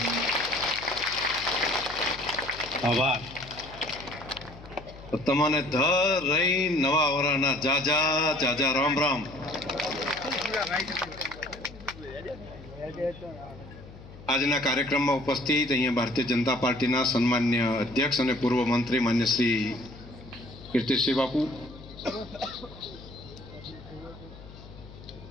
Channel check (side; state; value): left; noise; hum, 17 dB below the sound